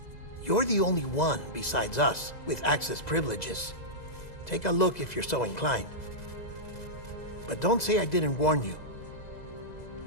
You're the only one besides us with access privileges. Take a look if you're so inclined. But don't say I didn't warn you.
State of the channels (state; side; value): late; right; 2.0 ms